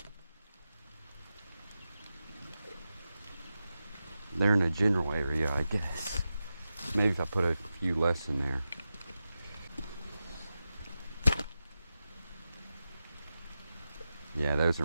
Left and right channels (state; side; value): inverted; both; correlation -0.91